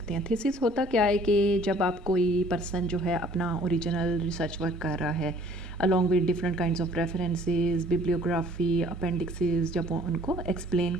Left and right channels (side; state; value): both; normal; correlation 0.55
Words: हैं। थीसिस होता क्या है कि जब आप कोई पर्सन जो है अपना ओरिजिनल रिसर्च वर्क कर रहा है along with different kinds of references, bibliography, appendices, जब वो उनको एक्सप्लेन